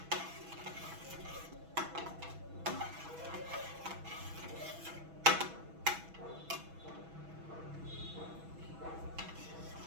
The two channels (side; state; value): left; late; 6.1 ms